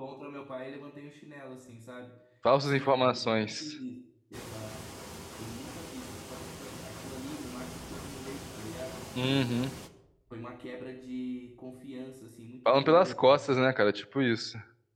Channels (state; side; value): identical; both; correlation 1.00